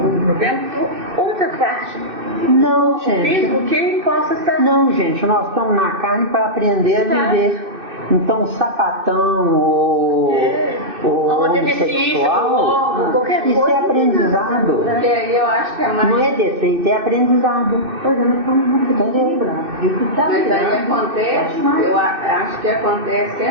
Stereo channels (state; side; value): late; left; 2.6 ms